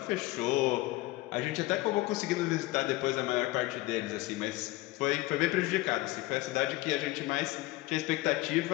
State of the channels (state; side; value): quieter; right; 19.1 dB